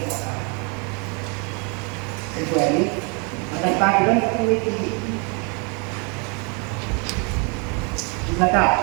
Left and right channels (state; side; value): quieter; left; 33.8 dB